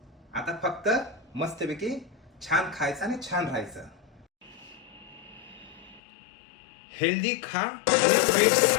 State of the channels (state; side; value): drops out; right; at 6.0 s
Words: आता फक्त मस्तपैकी छान खायचं आणि छान राहायचं. हेल्दी खा आणि फिट